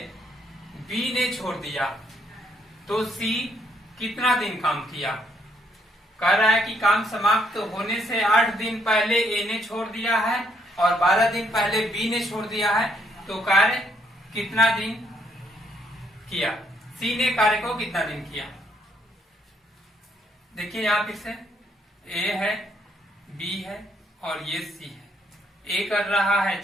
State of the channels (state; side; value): normal; both; correlation 0.71